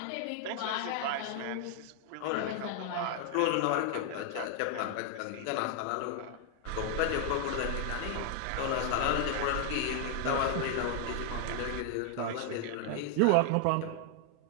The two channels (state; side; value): different; both; correlation 0.00